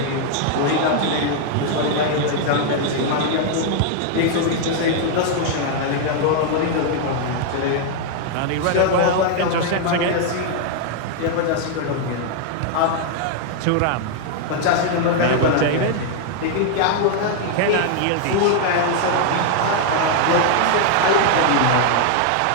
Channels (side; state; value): both; different; correlation 0.00